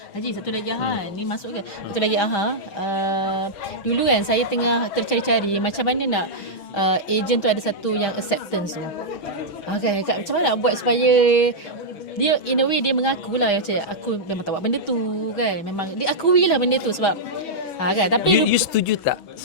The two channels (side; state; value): right; late; 6.2 ms